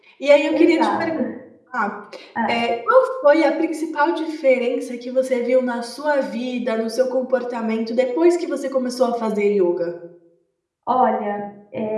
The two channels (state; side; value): identical; both; correlation 1.00